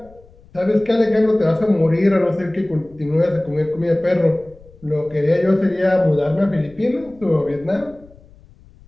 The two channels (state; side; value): noise; left; rumble, 25 dB below the sound